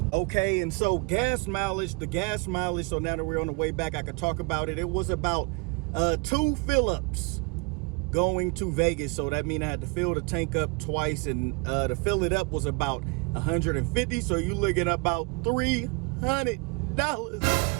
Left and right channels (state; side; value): quieter; left; 30.1 dB